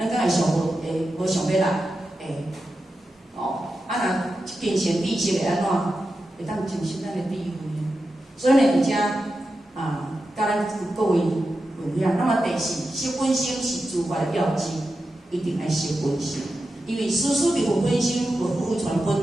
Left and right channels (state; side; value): normal; both; correlation 0.90